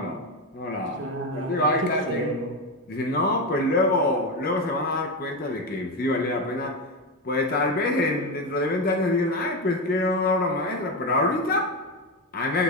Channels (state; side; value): normal; both; correlation 0.14